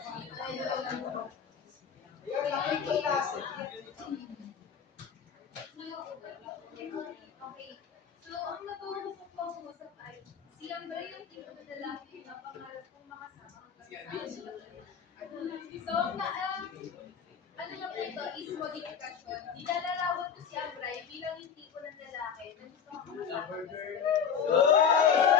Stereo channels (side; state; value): right; quieter; 7.1 dB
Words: Ayun, kapit ko klase. Okay. So, ang napausap ko usap ay si Ambra yung tipo na lalaki na pangarap kong makasama. So, ano na po ito is modification. Nilalarawan ko si Ambray bilang yung tipo ng lalaki na gusto ko makasama.